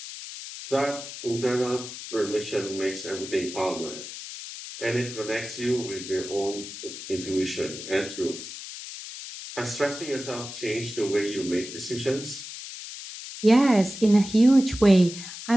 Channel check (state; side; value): noise; left; hiss, 11 dB below the sound